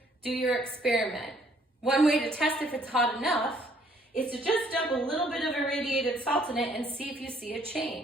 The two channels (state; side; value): normal; both; correlation 0.63